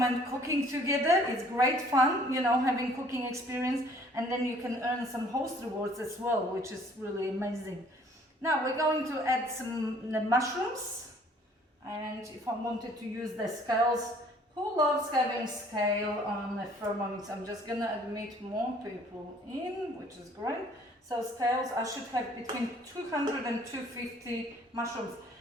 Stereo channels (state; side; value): normal; both; correlation 0.57